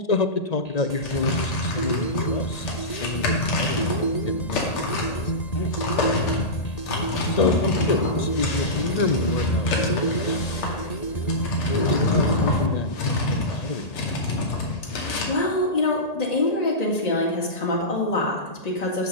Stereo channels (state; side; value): late; right; 1.8 ms